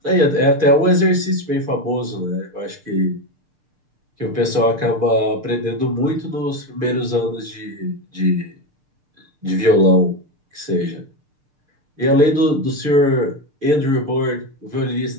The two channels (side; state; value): left; late; 6.6 ms